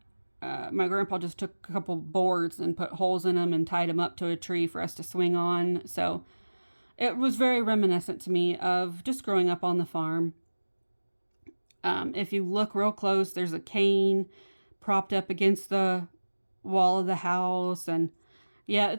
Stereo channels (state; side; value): inverted; both; correlation -1.00